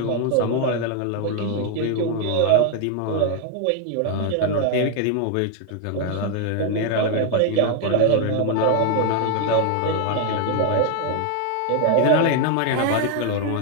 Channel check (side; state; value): both; different; correlation 0.01